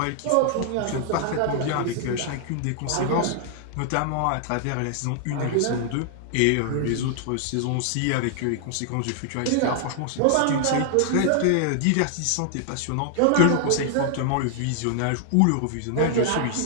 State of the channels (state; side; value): different; both; correlation 0.00